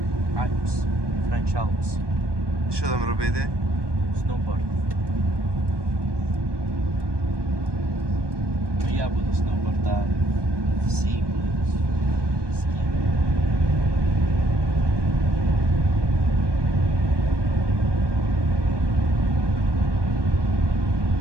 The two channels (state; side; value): late; left; 1.2 ms